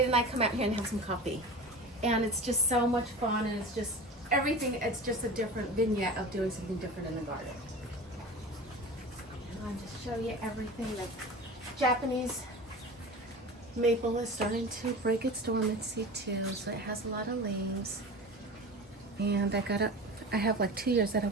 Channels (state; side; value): normal; both; correlation 0.33